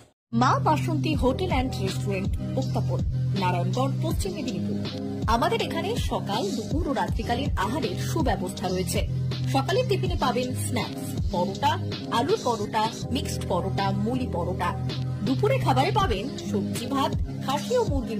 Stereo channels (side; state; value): both; identical; correlation 1.00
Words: মা বাসন্তী হোটেল অ্যান্ড রেস্টুরেন্ট, উত্তাপন, নারায়ণগড়, পশ্চিম মেদিনীপুর। আমাদের এখানে সকাল, দুপুর ও রাত্রিকালীন আহারের সুব্যবস্থা রয়েছে। সকালের টিফিনে পাবেন স্ন্যাক্স, পরোটা, আলুর পরোটা, মিক্সড পরোটা, মুলি পরোটা। দুপুরে খাবারে পাবেন সবজি ভাত, খাসি ও